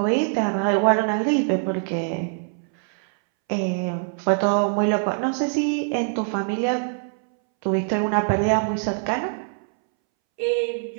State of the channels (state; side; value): silent; left; 63 dB below the other